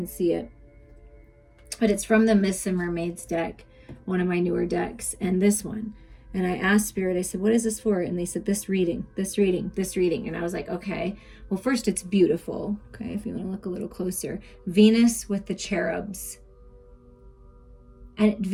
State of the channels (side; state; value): both; identical; correlation 1.00